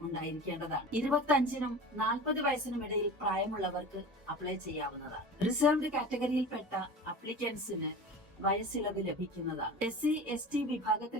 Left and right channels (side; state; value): both; normal; correlation 0.34